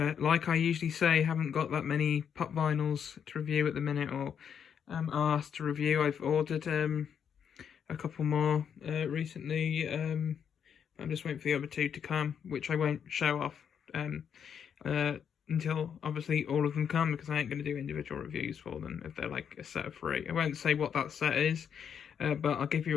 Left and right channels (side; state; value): right; quieter; 7.8 dB